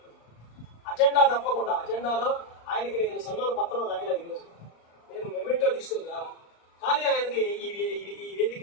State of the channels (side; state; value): right; late; 35 ms